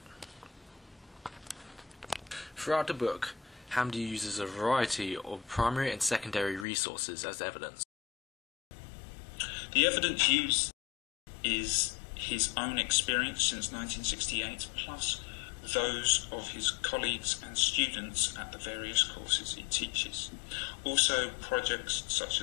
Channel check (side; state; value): right; drops out; at 6.7 s